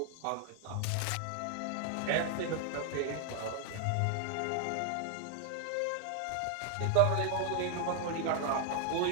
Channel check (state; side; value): different; both; correlation 0.00